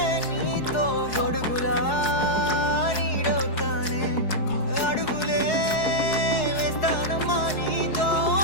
నీతో గొడుగులా నీడవుతానే అడుగులే వేస్తానమ్మా నీతో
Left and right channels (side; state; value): right; late; 4.7 ms